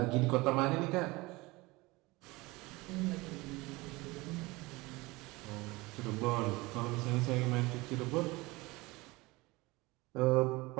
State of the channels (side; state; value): left; quieter; 22.4 dB